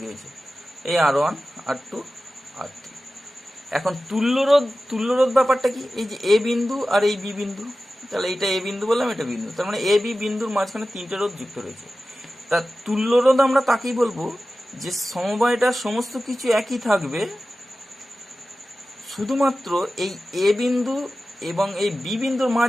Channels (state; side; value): normal; both; correlation 0.94